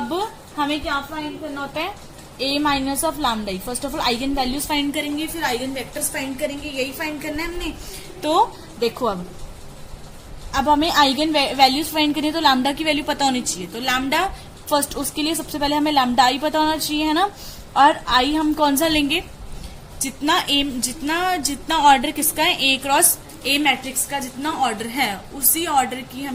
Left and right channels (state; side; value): identical; both; correlation 1.00